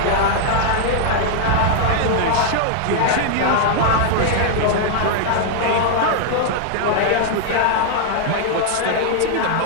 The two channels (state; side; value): different; both; correlation -0.01